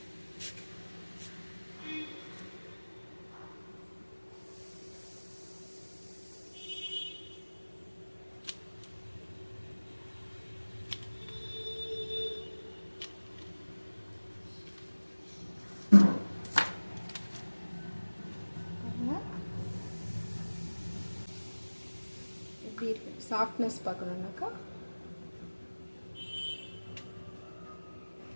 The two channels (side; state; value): both; inverted; correlation -1.00